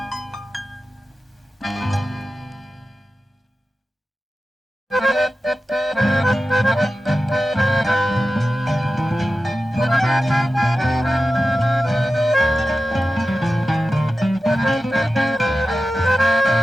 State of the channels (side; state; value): both; normal; correlation 0.94